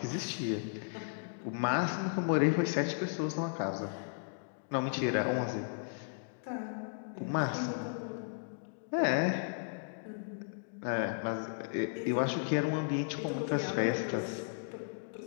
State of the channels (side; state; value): right; silent; digital silence